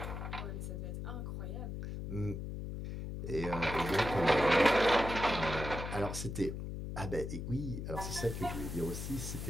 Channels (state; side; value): noise; left; hum, 5 dB below the sound